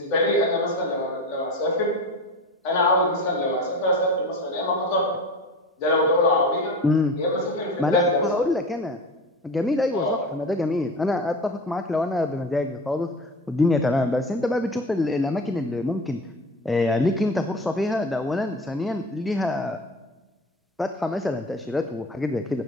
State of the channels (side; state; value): both; normal; correlation 0.32